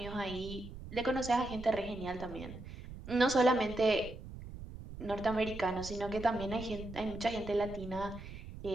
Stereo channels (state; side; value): noise; right; rumble, 12 dB below the sound